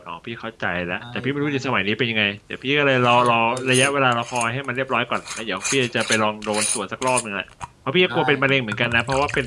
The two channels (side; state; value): both; identical; correlation 1.00